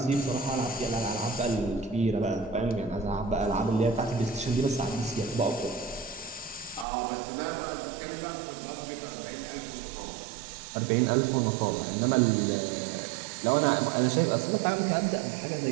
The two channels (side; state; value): left; drops out; at 6.9 s